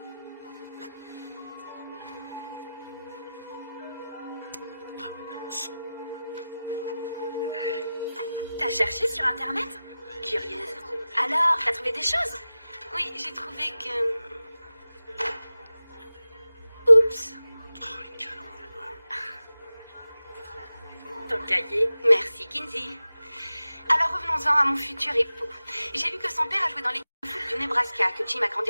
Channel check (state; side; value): inverted; both; correlation -0.95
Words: T'as cherché sur Internet? Curieuse. Alors, t'as trouvé des choses? Oui, j'ai trouvé que... Oups. Oh, les canons. Ton cahier. Merci, Kinsey. Alors revenons-en à mon futur époux. J'ai lu que son père a joué dans l'équipe de foot du Nebraska, que Jim a